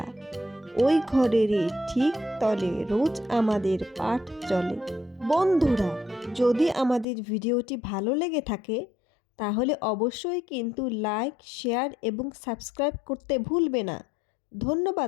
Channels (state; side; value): drops out; right; at 7.1 s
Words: ওই ঘরেরই ঠিক তলে রোজ আমাদের পাঠ চলে। বন্ধুরা, যদি আমাদের ভিডিওটি ভালো লেগে থাকে তাহলে অবশ্যই কিন্তু লাইক, শেয়ার এবং সাবস্ক্রাইব করতে ভুলবে না।